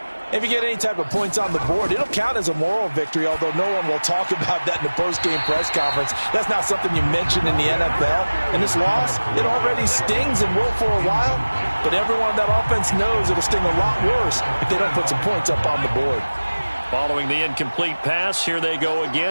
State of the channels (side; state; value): both; inverted; correlation -1.00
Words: If you get any type of points on the board, it'll count as a moral victory, although no one will talk about that in the post-game press conference. That's not something you mention in the NFL. And this loss, it already stings and will for a while, but everyone on that offense knows it'll sting a lot worse if they don't put some points up on the board. Following the incomplete pass, here they go